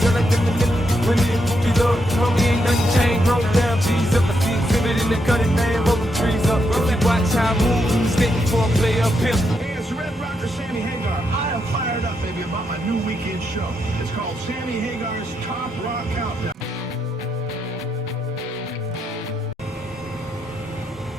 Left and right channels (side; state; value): both; normal; correlation 0.80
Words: like them the niggas? When it be love, homie ain't nothing changed. Roll down, cheese up. I see exhibit in the cutting, man, rolling trees up. If you watch how I move, you stick before I play up here. Hey, it's Red Rocker Sammy Hagar. I am fired up, baby, about my new weekend show. It's called Sammy Hagar's Top Rock Countdown.